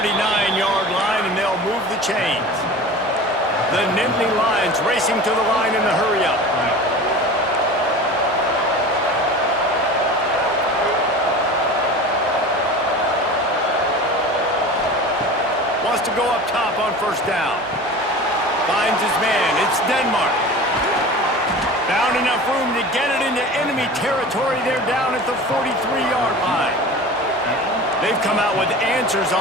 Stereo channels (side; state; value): both; normal; correlation 0.36